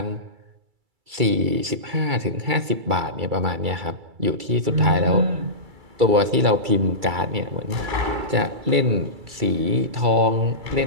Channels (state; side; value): late; left; 2.3 ms